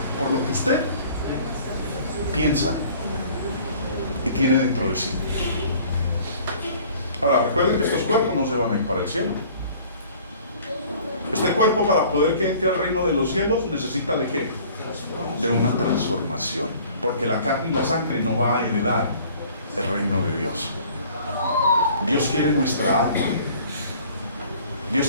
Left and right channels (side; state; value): both; inverted; correlation -0.51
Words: por lo que usted piensa y tiene dentro de sí. Ahora, recuerden que estos cuerpos no se van a ir para el cielo. Este cuerpo, para poder que entre al reino de los cielos, necesita ¿de qué? De una transformación, porque la carne y la sangre no va a heredar el reino de Dios. Dios quiere nuestra alma, Dios